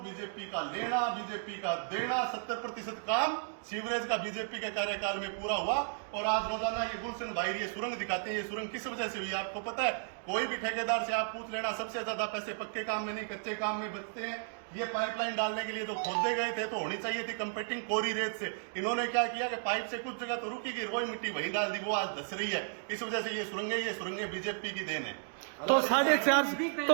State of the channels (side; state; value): left; silent; digital silence